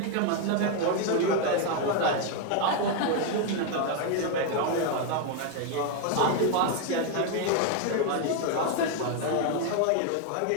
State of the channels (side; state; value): both; different; correlation 0.01